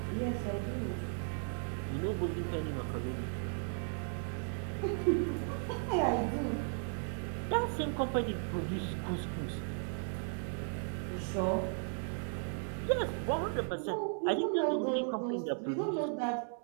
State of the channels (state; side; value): silent; left; 54 dB below the other